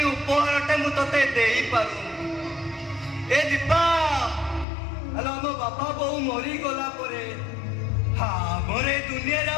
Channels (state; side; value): drops out; right; at 4.7 s